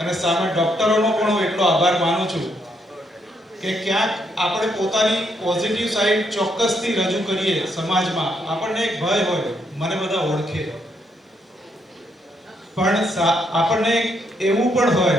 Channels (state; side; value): normal; both; correlation 0.75